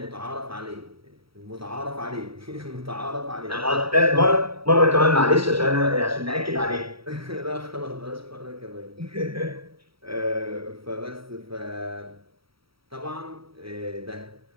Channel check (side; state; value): left; late; 0.75 ms